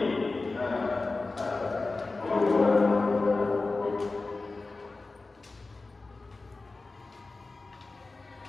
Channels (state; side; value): quieter; right; 3.5 dB